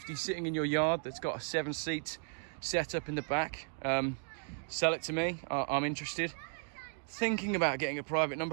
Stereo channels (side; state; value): left; silent; 54 dB below the other